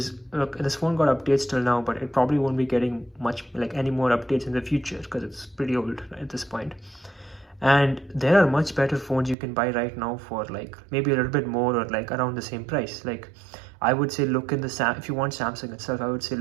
look, this phone got updates till now, but it probably won't be getting much like any more updates in the future because it's pretty old at this point. And there are much better phones you can buy right now for like maybe a little bit more or like around the same price. Like I would say look in if you want Samsung itself, I would say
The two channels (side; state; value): left; drops out; at 9.3 s